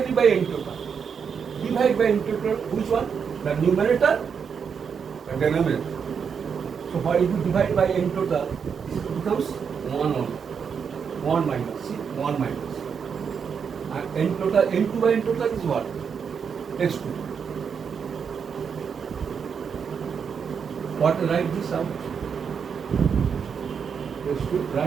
by n total. Divide by n total, which one? The numerator and denominator. So what if you divide by n total, this becomes 1 only. 1 minus. See, 1 minus. And n total, n2 by n total is what? x2. What write this out? x2,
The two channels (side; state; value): left; quieter; 6.6 dB